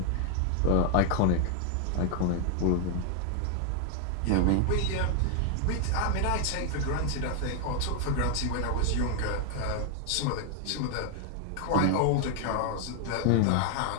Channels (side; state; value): both; different; correlation 0.00